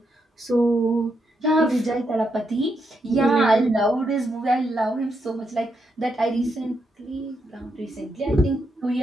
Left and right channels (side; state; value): both; normal; correlation 0.81